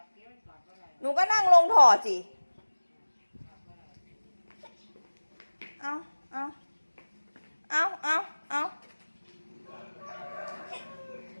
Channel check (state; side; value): inverted; both; correlation -1.00